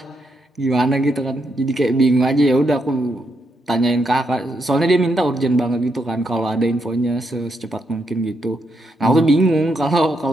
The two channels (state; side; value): normal; both; correlation 0.80